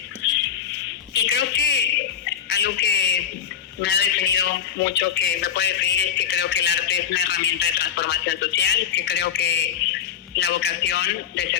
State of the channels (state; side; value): quieter; right; 8.7 dB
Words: Y creo que algo que me ha definido mucho, que me puede definir, es que creo que el arte es una herramienta de transformación social, que creo que la vocación de